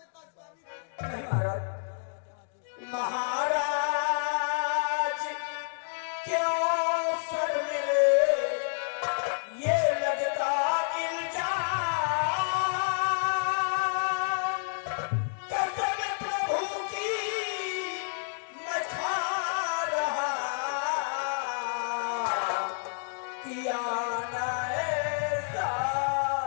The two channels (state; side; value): silent; right; digital silence